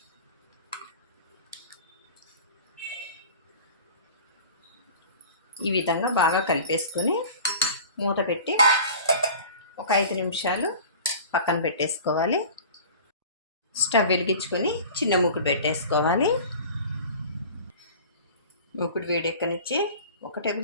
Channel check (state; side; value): inverted; both; correlation -0.41